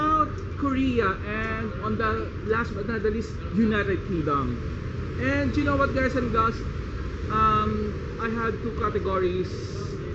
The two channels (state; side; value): identical; both; correlation 1.00